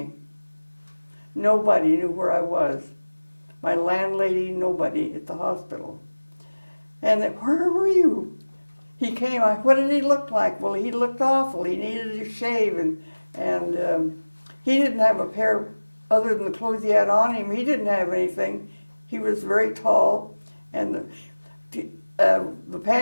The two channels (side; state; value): both; inverted; correlation -1.00